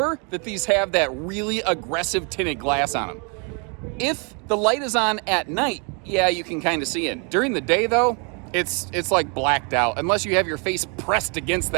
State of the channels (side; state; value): left; quieter; 35.0 dB